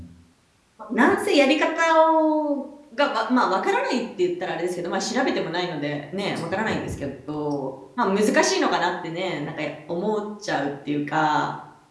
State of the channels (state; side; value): identical; both; correlation 1.00